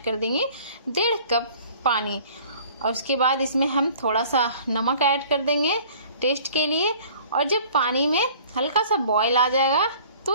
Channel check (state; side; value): inverted; both; correlation -0.50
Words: कर देंगे 1.5 कप पानी। और उसके बाद इसमें हम थोड़ा सा नमक ऐड कर देंगे टेस्ट के लिए। और जब पानी में हल्का सा बॉयल आ जाएगा